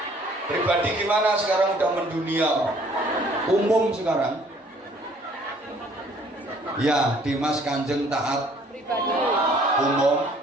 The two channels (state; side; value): normal; both; correlation 0.58